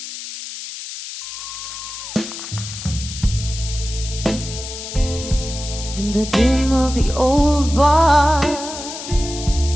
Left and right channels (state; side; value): noise; left; hiss, 9 dB below the sound